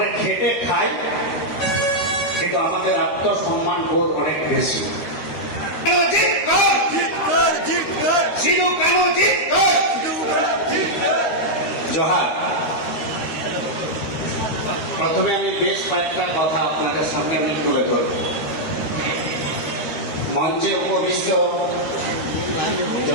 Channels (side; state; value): right; late; 13 ms